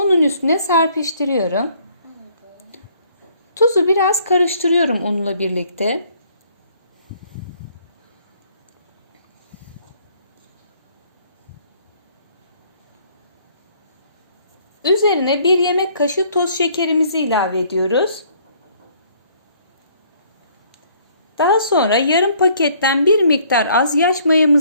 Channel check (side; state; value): both; inverted; correlation -0.62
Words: üstüne serpiştiriyorum. Tuzu biraz karıştırıyorum unla birlikte. Üzerine 1 yemek kaşığı toz şekerimizi ilave ediyoruz. Daha sonra yarım paketten bir miktar az yaş